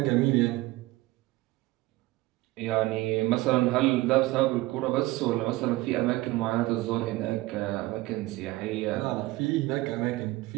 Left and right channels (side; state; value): left; quieter; 19.2 dB